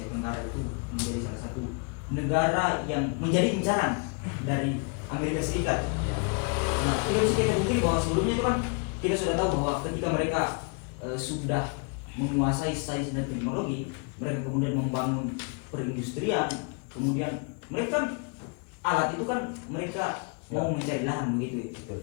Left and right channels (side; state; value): right; quieter; 34.7 dB